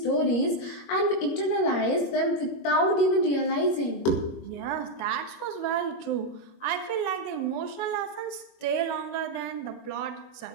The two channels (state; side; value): late; right; 21 ms